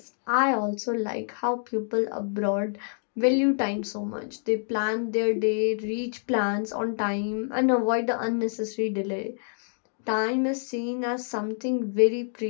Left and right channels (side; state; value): right; silent; digital silence